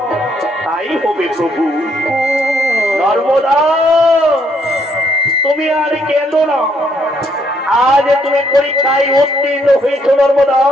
তাই হবে প্রভু নর্মদা তুমি আর কেঁদো না আজ তুমি পরীক্ষায় উত্তীর্ণ হয়েছ নর্মদা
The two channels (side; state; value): both; normal; correlation 0.70